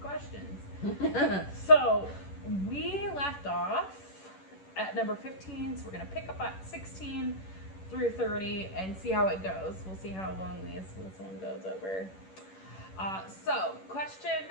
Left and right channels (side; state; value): right; late; 11 ms